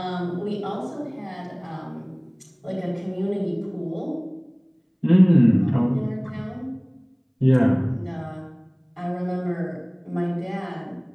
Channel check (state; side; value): identical; both; correlation 1.00